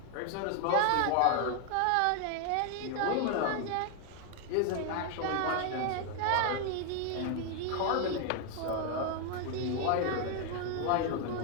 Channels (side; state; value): both; different; correlation 0.00